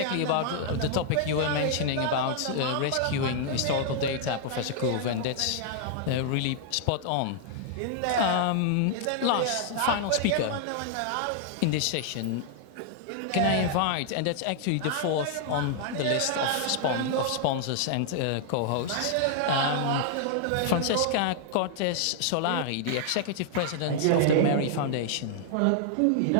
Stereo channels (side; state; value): both; different; correlation -0.01